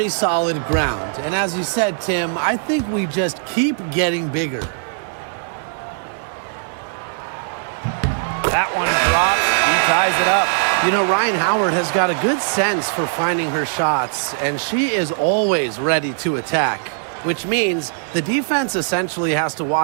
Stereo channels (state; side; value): silent; left; digital silence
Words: solid ground. And as you said, Tim, I think we just keep getting bigger. That one drops. He ties it up. You know, Ryan Howard has got a good sense for finding her shots, and she is always ready to attack, which means the defense essentially has to